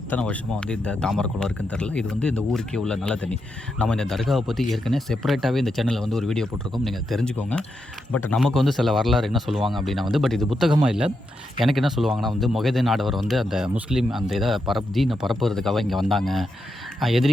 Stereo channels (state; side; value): normal; both; correlation 0.84